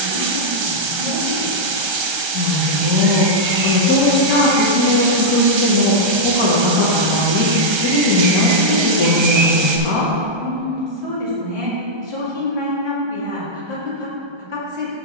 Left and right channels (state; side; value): late; left; 1.3 ms